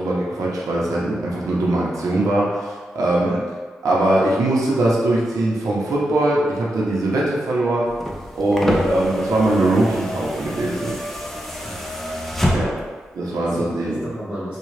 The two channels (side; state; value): both; normal; correlation 0.86